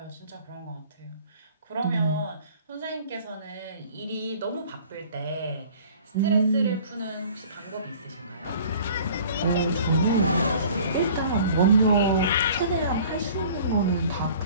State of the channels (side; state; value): both; inverted; correlation -0.49